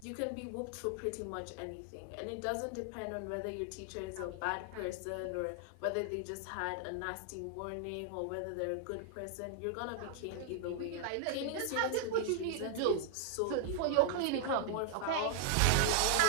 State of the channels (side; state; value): both; different; correlation -0.01